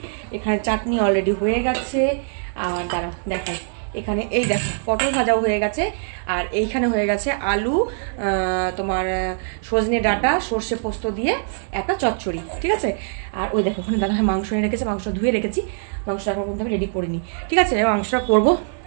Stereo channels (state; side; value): silent; left; digital silence